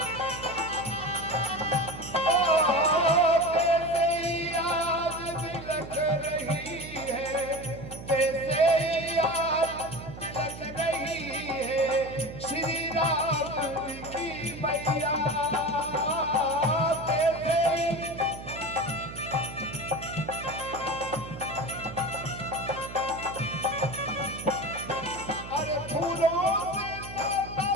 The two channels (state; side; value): noise; right; hum, 12 dB below the sound